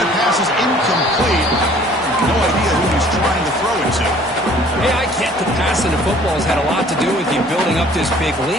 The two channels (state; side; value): normal; both; correlation 0.54